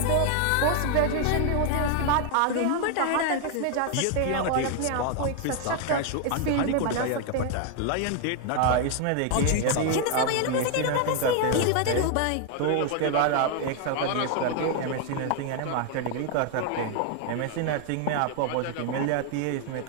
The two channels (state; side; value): different; both; correlation 0.00